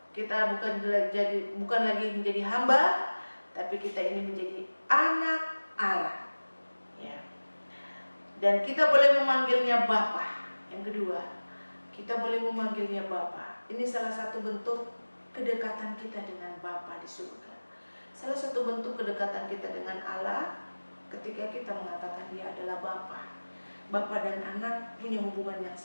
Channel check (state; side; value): inverted; both; correlation -1.00